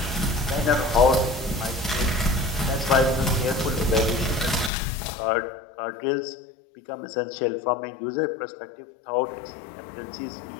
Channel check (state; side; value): drops out; right; at 4.7 s